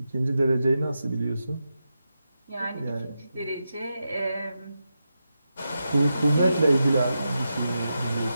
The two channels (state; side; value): inverted; both; correlation -0.88